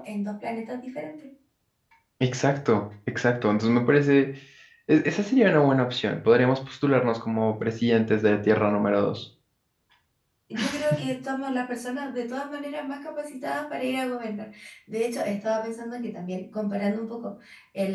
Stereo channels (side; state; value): both; identical; correlation 1.00